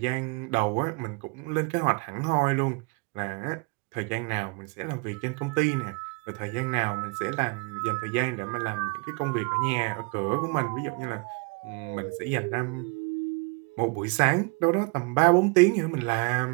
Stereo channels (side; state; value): left; quieter; 31.6 dB